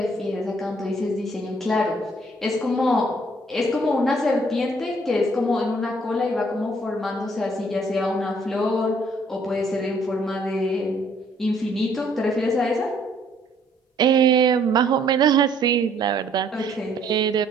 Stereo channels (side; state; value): both; normal; correlation 0.63